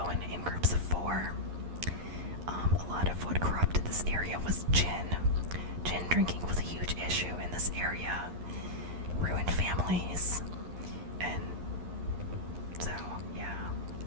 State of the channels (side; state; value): left; late; 11 ms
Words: in groups of 4. A lot of what corrupted this area was gin. Gin drinking was a huge issue in this area. Ruined families. And so, yeah.